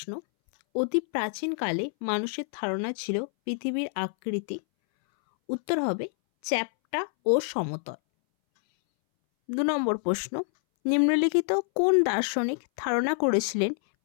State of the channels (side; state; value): right; silent; 60 dB below the other